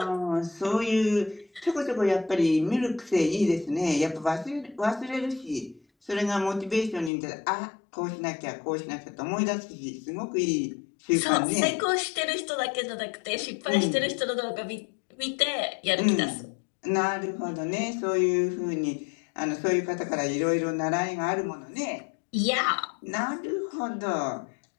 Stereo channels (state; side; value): drops out; right; at 7.1 s